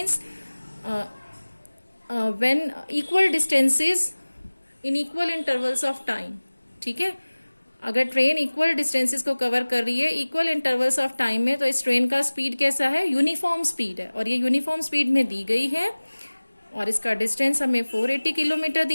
when equal distances in equal intervals of time. ठीक है, अगर ट्रेन इक्वल डिस्टेंसेस को कवर कर रही है इक्वल इंटरवल्स ऑफ टाइम में, तो इस ट्रेन का स्पीड कैसा है, यूनिफॉर्म स्पीड है, और ये यूनिफॉर्म स्पीड में दी गई है, और इसका डिस्टेंस हमें 480 किलोमीटर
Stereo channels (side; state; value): both; inverted; correlation -1.00